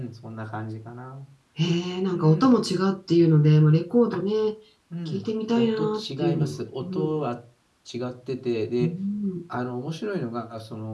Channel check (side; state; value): both; identical; correlation 1.00